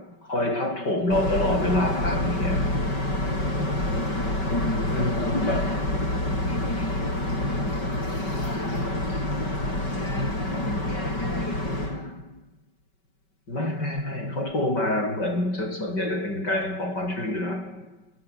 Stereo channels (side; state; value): right; late; 5.2 ms